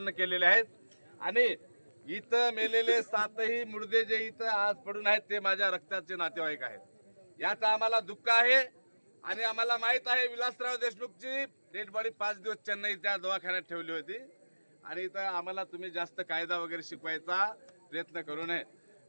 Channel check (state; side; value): inverted; both; correlation -1.00